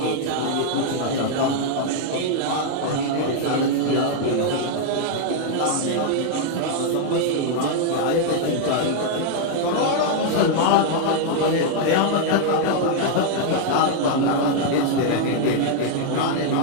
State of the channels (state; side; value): different; both; correlation 0.00